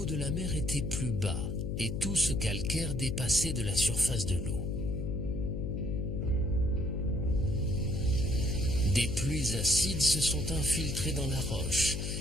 de la mer était plus bas et tout ce calcaire dépassait de la surface de l'eau. Des pluies acides se sont infiltrées dans la roche,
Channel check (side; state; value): left; noise; hum, 2 dB below the sound